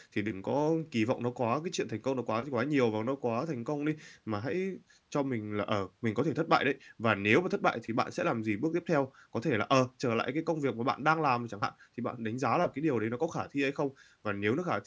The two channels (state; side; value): identical; both; correlation 1.00